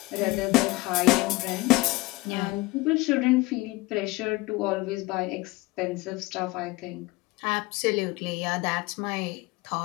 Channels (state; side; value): quieter; right; 21.6 dB